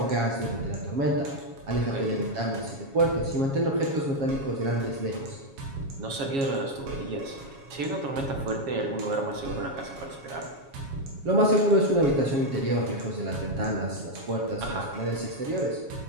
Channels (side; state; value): left; late; 7.3 ms